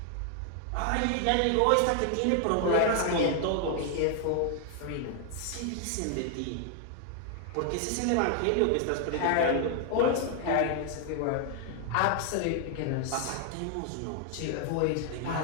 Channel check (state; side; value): different; both; correlation 0.00